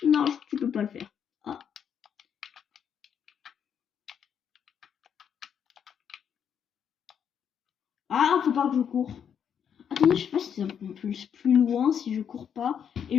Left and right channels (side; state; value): right; quieter; 8.1 dB